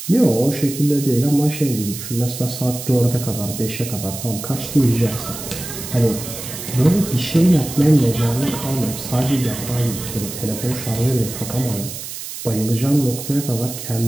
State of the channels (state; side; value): noise; right; hiss, 9 dB below the sound